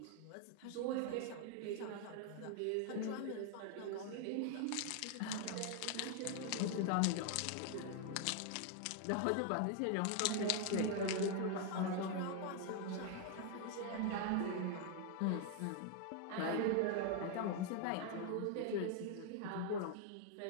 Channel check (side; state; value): both; different; correlation 0.00